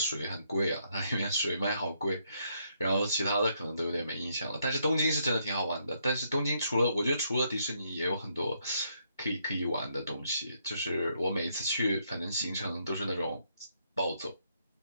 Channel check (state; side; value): inverted; both; correlation -0.74